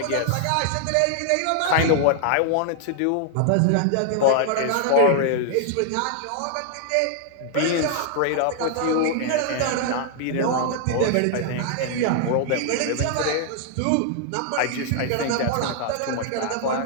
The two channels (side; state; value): both; different; correlation 0.00